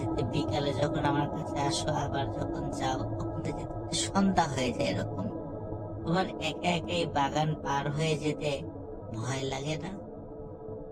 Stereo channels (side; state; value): both; identical; correlation 1.00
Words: বিকালে যখন আমার কাছে আসো আবার যখন যাও তখন যেতে সন্ধ্যা হয়ে যায়। এরকম তোমার একা একা এই বাগান পার হয়ে যেতে ভয় লাগে না?